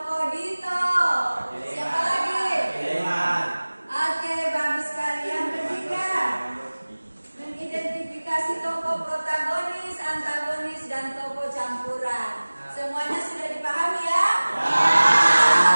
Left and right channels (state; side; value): inverted; both; correlation -1.00